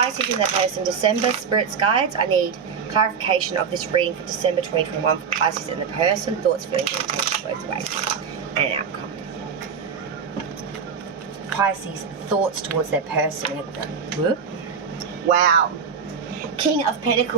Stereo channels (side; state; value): left; quieter; 6.4 dB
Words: in their person, December, Spirit's Guides. I need clarification of this reading for December 2021 for Pisces in the person. Thoughts, feelings, and intentions both ways. And an outcome. Pisces, thoughts towards their person. Whoop. Wow. King of